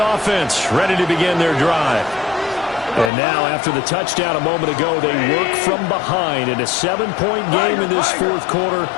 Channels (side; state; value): right; drops out; at 3.1 s